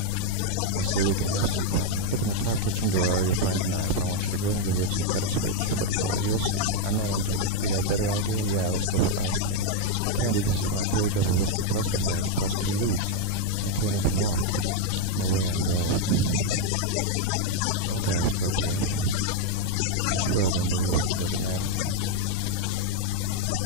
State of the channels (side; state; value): both; different; correlation 0.01